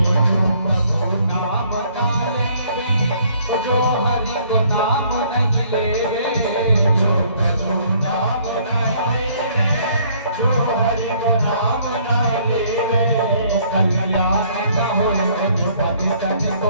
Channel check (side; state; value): both; inverted; correlation -0.62